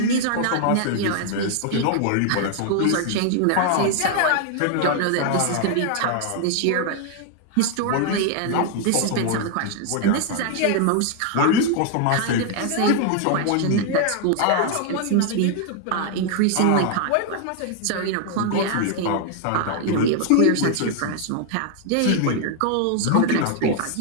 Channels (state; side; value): different; both; correlation 0.00